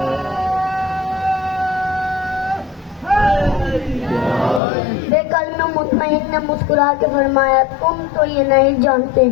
بے کلمہ مطمئن نے مسکرا کے فرمایا، تم تو یہ نہیں جانتے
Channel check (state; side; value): drops out; right; at 4.6 s